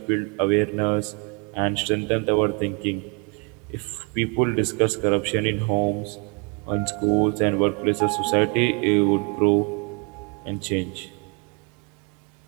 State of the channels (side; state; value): left; quieter; 34.2 dB